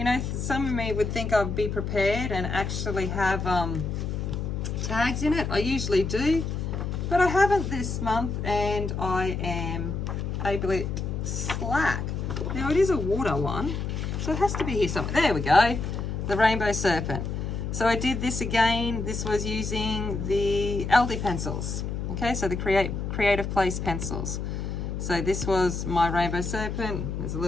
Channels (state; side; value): noise; left; hum, 3 dB below the sound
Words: know, some of me would think I'd be prepared and actually have tags in it. I usually do, but I haven't this month, and I am a bit slack. Now it is a water one, so it has to be here somewhere. There we go, the Rainbow Serpent. So I did this again. This was using the Aldi pencils. Okay, so the Creative Place pencils. So this was my Rainbow Serpent. There's a